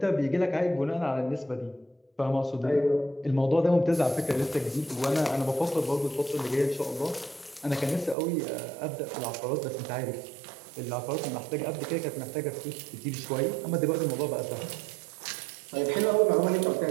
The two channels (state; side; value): drops out; left; at 8.2 s